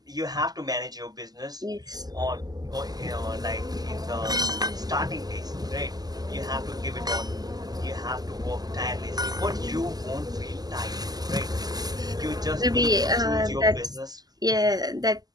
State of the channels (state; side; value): late; left; 0.19 ms